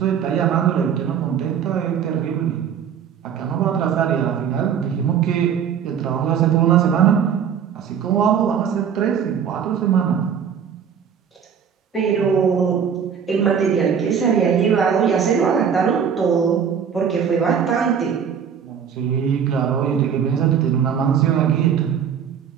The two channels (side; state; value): left; quieter; 7.7 dB